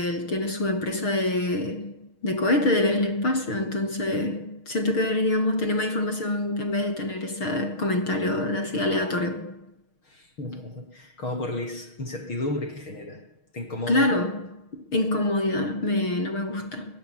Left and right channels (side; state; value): right; late; 6.4 ms